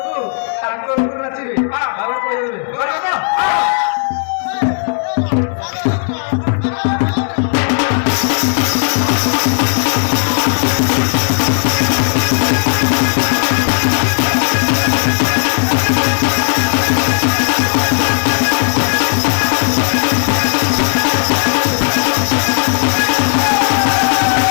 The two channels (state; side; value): silent; right; digital silence